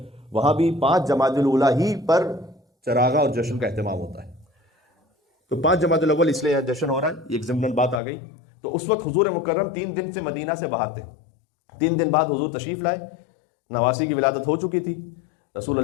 وہاں بھی 5 جمادی الاولیٰ ہی پر چراغاں اور جشن کا اہتمام ہوتا ہے۔ تو 5 جمادی الاول اس لیے جشن ہو رہا ہے، ایک ضمن بات آ گئی۔ تو اس وقت حضور مکرم 3 دن سے مدینہ سے باہر تھے، 3 دن بعد حضور تشریف لائے، نواسی کی ولادت ہو چکی تھی۔ رسول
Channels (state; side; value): drops out; right; at 8.0 s